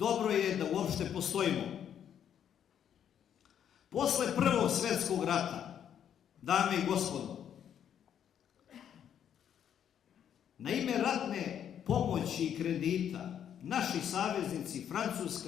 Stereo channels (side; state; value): right; quieter; 9.2 dB